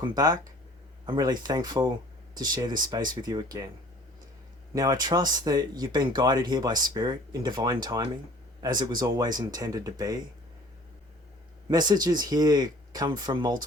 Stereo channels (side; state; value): both; normal; correlation 0.51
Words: back. I'm really thankful to share this space with you again. Now I trust that you've been guided here by Spirit in divine timing, as it was always intended to be. Messages here come from